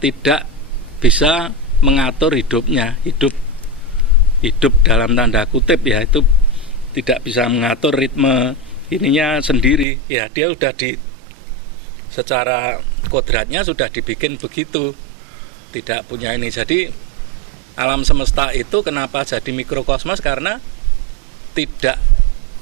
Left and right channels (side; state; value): left; drops out; at 9.9 s